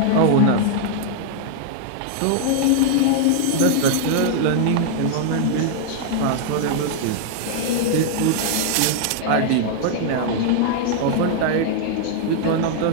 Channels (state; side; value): different; both; correlation 0.00